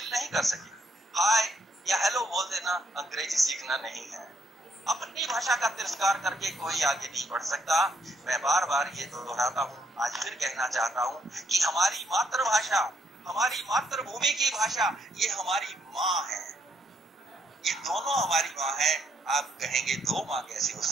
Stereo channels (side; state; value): both; normal; correlation 0.72